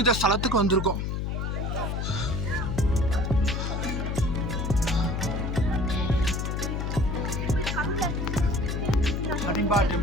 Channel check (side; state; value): left; noise; hum, 1 dB below the sound